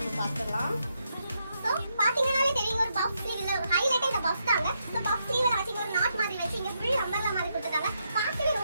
பார்க்கலாம். சோ பாத்தீங்கனாலே தெரியும் ஒரு பஃப் ஸ்லீவ்ல ஒரு ஹைலைட் இந்த பஃப் தாங்க. சோ பஃப் ஸ்லீவ்ல வச்சு ஒரு நாட் மாதிரி வச்சு இங்க ஃபுல் அம்பர்லா மாதிரி கொடுத்துட்டாங்க. பார்க்கவே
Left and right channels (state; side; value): inverted; both; correlation -0.81